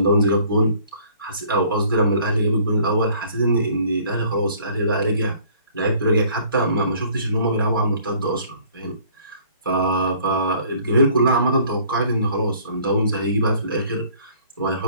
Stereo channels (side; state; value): both; inverted; correlation -0.56